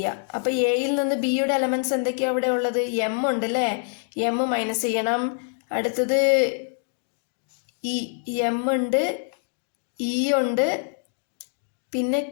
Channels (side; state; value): right; silent; 62 dB below the other